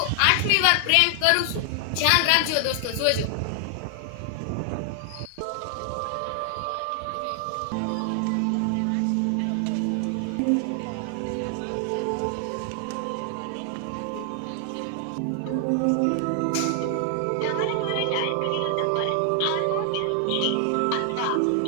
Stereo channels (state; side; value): different; both; correlation 0.00